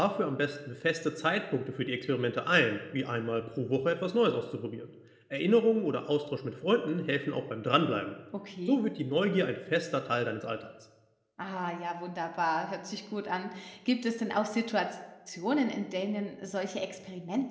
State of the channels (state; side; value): identical; both; correlation 1.00